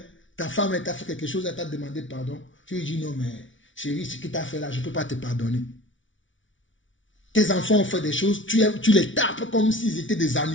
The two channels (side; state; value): right; late; 0.56 ms